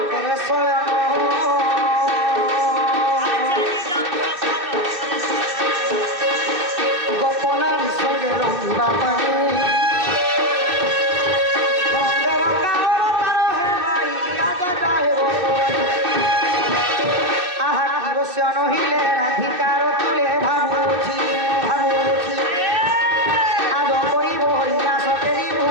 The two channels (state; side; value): late; left; 2.8 ms